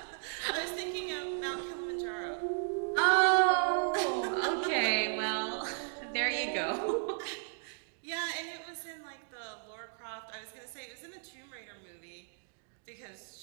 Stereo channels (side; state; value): left; silent; digital silence